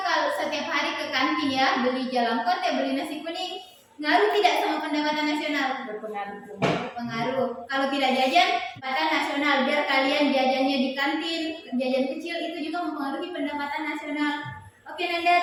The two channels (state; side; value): identical; both; correlation 1.00